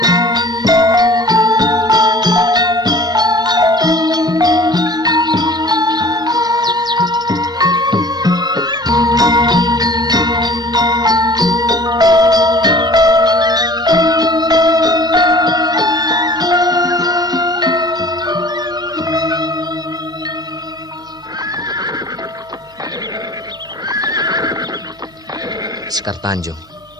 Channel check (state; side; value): normal; both; correlation 0.46